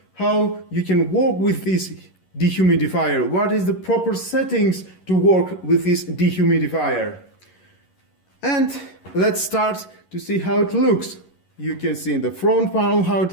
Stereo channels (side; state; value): right; late; 11 ms